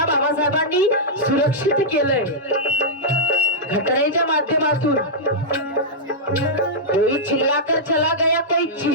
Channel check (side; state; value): both; normal; correlation -0.09